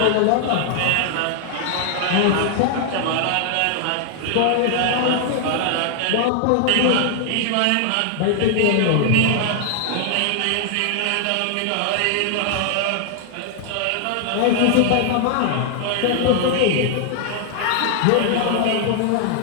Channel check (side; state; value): both; different; correlation 0.00